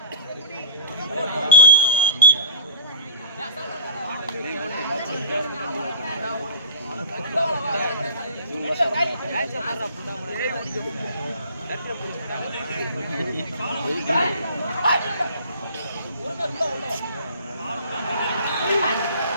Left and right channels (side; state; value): both; inverted; correlation -0.41